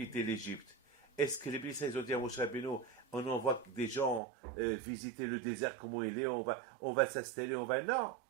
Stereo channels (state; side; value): drops out; left; at 4.2 s